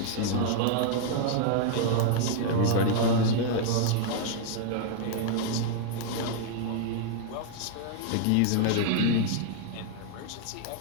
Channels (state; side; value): different; both; correlation -0.01